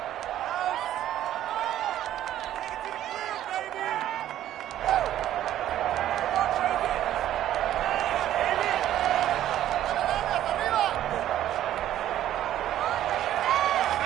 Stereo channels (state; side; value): quieter; left; 12.3 dB